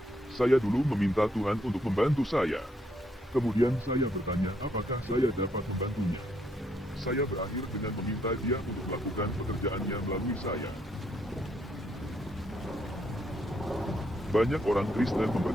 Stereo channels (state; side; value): normal; both; correlation 0.73